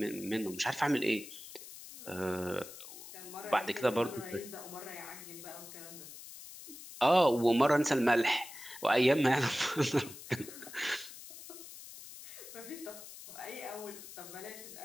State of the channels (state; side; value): noise; left; hiss, 14 dB below the sound